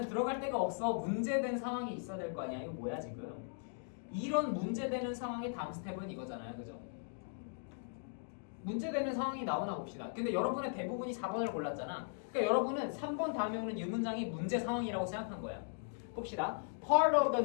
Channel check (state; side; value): silent; right; digital silence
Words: 들어갈 데가 없어. 문제된 상황이 있어야 될 거 아니야. 이거 뭐야 지금? 이런 문제되는 상황의 다음 스텝은 이거잖아요. 그죠? 문제되는 상황이 나오나 봅시다. 근데 여러분의 대부분이 4번을 골랐잖아. 그러니까 여러분은 3번 다음에 오는 이 문장이 문제 상황이라고 생각한 거야. 봅시다. Part of